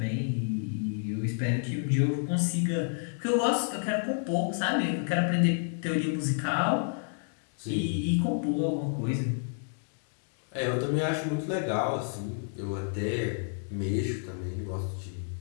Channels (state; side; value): silent; right; digital silence